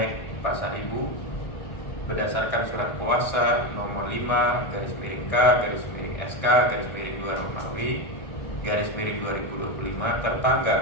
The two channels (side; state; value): right; late; 1.6 ms